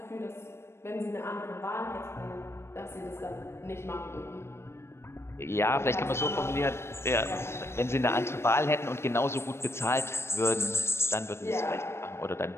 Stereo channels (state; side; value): late; right; 0.12 ms